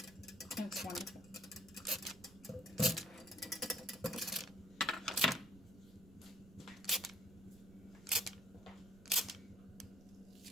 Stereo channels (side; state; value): right; noise; rumble, 21 dB below the sound